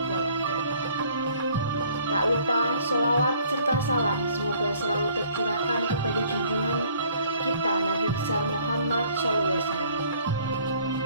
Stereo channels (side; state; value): both; inverted; correlation -0.59